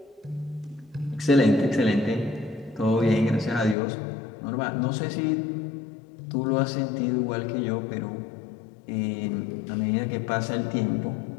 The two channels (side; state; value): right; drops out; at 3.8 s